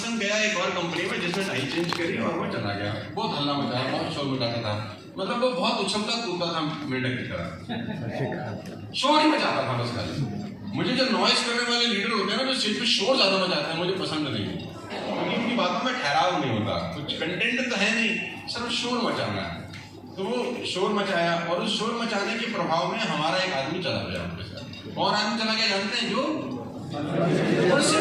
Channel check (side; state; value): both; identical; correlation 1.00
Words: गया एक और कंपनी में जिसने टाई चेंज करी और वो चला गया। बहुत हल्ला मचाया, बहुत शोर मचाता था, मतलब वो बहुत उछलता कूदता था मेंढक की तरह, शोर ही मचाता था बस खाली। मुझे जो नॉइज करने वाले लीडर होते हैं ना, जो स्टेज पे शोर ज्यादा मचाते हैं, मुझे पसंद नहीं, क्योंकि उनकी बातों में ठहराव नहीं होता, कुछ कंटेंट तो है नहीं, सिर्फ शोर मचाना है। तो वो शोर मचाया और उस शोर मचाने के प्रभाव में हमारा एक आदमी चला गया उनके साथ। कौन आदमी चला गया जानते हैं? जो